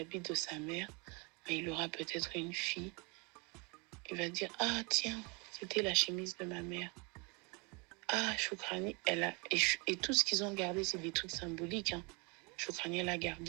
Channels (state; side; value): quieter; left; 31.2 dB